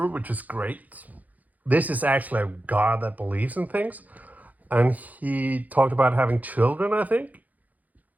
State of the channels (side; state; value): left; late; 0.079 ms